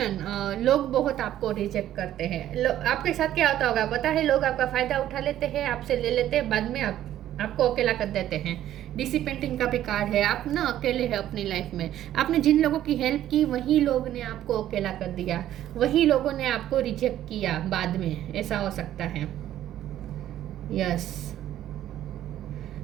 लोग बहुत आपको रिजेक्ट करते हैं। आपके साथ क्या होता होगा पता है, लोग आपका फायदा उठा लेते हैं, आपसे ले लेते हैं, बाद में आपको अकेला कर देते हैं। डिसिपेंटिंग का भी कार्ड है, आप ना अकेले हैं अपनी लाइफ में। आपने जिन लोगों की हेल्प की वही लोग ने आपको अकेला कर दिया, वही लोगों ने आपको रिजेक्ट किया बाद में, ऐसा हो सकता है। यस,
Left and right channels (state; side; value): quieter; left; 12.3 dB